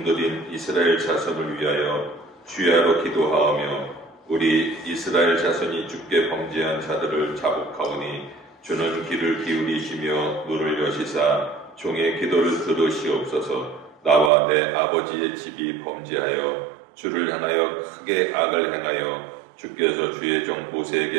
이스라엘 자손을 위하여 주야로 기도하오며, 우리 이스라엘 자손이 주께 범죄한 자들을 자복하오니 주는 귀를 기울이시며 눈을 여시사 종의 기도를 들으시옵소서. 나와 내 아버지의 집이 범죄하여 주를 향하여 크게 악을 행하여 주께서 주의 종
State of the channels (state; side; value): drops out; left; at 14.3 s